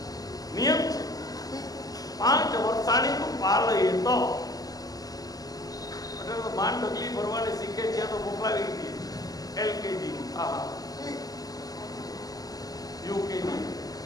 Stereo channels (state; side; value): late; right; 0.18 ms